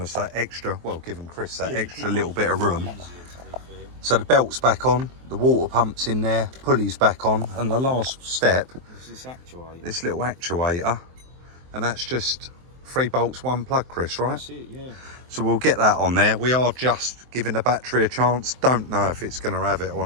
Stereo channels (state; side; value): late; left; 23 ms